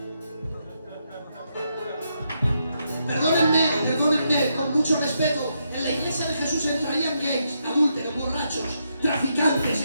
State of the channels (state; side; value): inverted; both; correlation -0.80